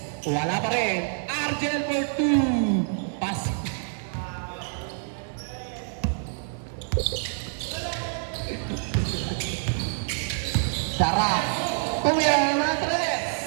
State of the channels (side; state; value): left; silent; digital silence